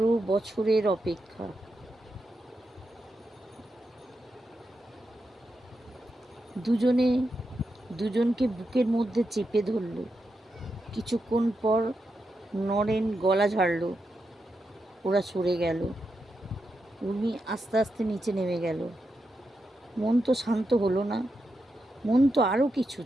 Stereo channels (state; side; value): normal; both; correlation 0.86